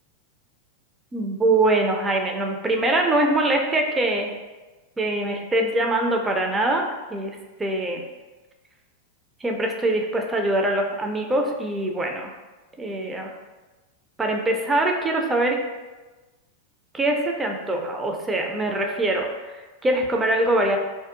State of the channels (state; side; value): normal; both; correlation 0.41